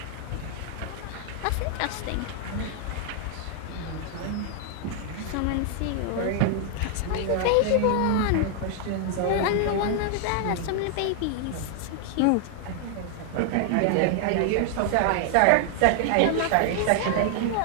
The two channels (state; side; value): different; both; correlation 0.00